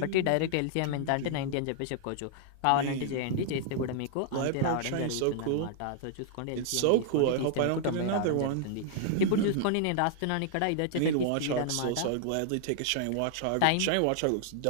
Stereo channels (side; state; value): both; different; correlation -0.01